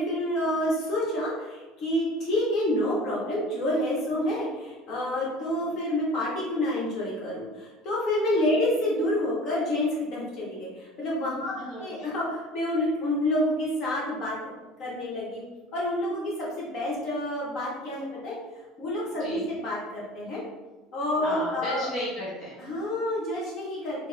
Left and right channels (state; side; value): normal; both; correlation 0.42